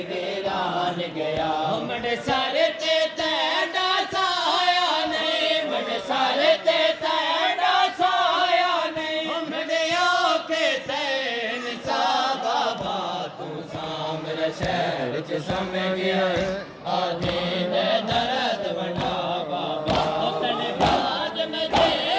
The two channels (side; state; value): both; identical; correlation 1.00